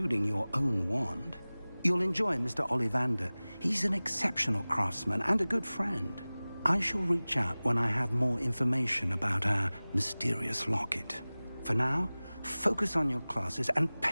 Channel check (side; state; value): both; inverted; correlation -0.99